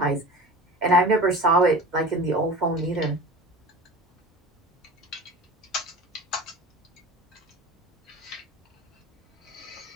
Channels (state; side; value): normal; both; correlation 0.35